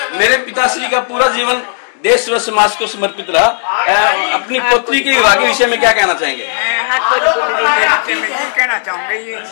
मेरे पिताश्री का पूरा जीवन देश व समाज को समर्पित रहा। अपनी पुत्री के विवाह के विषय में क्या कहना चाहेंगे? मैं ये कहना चाहूंगा, ये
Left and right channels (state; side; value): silent; right; digital silence